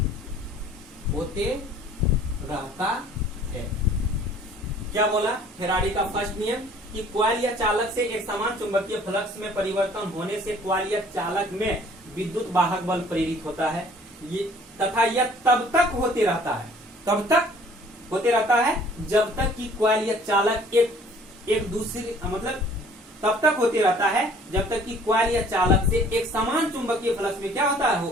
क्या बोला? फैराडे का फर्स्ट नियम कि कॉइल कॉइल या चालक से एक समान चुंबकीय फ्लक्स में परिवर्तन होने से कॉइल या चालक में विद्युत वाहक बल प्रेरित होता है। ये तथा यह तब तक होते रहता है, तब तक होते रहता है जब तक कि कॉइल या चालक एक दूसरे मतलब तब तक होते रहता है जब तक कि कॉइल या चालक से एक समान चुंबकीय फ्लक्स में क्या होता है,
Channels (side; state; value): both; normal; correlation 0.54